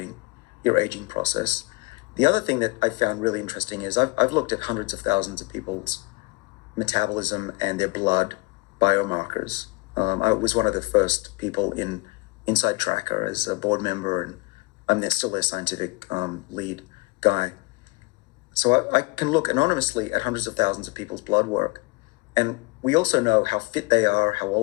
your aging process. The other thing that I found really interesting is I've looked at hundreds of thousands of people's metabolism and their blood biomarkers. I was one of the first people in Inside Tracker as a board member, and I'm still their scientific lead guy. So I can look anonymously at hundreds of thousands of people's blood work. And we also know how fit they are, how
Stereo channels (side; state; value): right; quieter; 26.9 dB